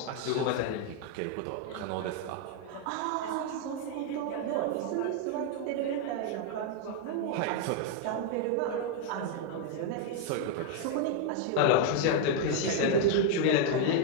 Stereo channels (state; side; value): different; both; correlation 0.00